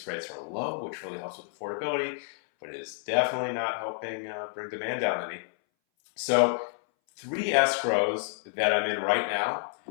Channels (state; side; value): silent; right; 58 dB below the other